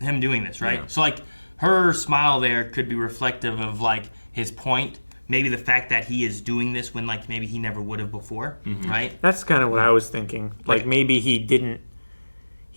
doing this, right? Yeah. So, like, her smile there could be reflective of, like, his point. Maybe the fact that he is doing this when, like, maybe he never would have before, right? That's kind of what I was thinking. Like, maybe he didn't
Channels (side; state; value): both; inverted; correlation -1.00